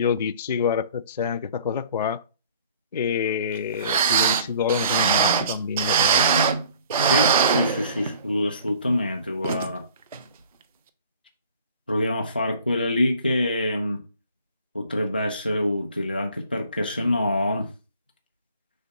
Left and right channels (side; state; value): both; inverted; correlation -0.51